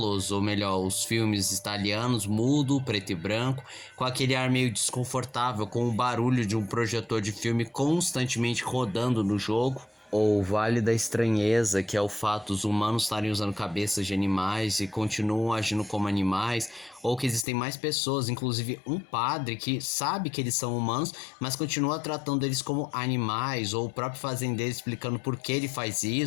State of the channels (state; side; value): drops out; right; at 17.4 s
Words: ou melhor, os filmes italianos, mudo, preto e branco, com aquele ar meio desconfortável, com o barulho de um projetor de filme constantemente rodando no jogo. Ou o Vale da Estranheza, que é o fato dos humanos estarem usando cabeças de animais e continuam agindo como animais, ou que existem mais pessoas, inclusive um padre que sabe que eles são humanos, mas continua tratando eles como animais, ou o próprio fazendeiro explicando por que ele faz